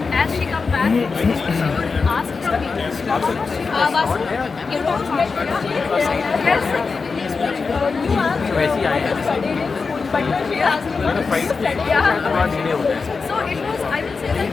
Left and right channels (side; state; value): right; quieter; 4.7 dB